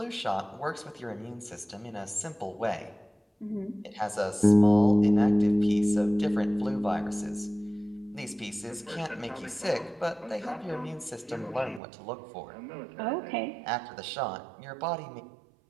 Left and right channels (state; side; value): drops out; left; at 11.8 s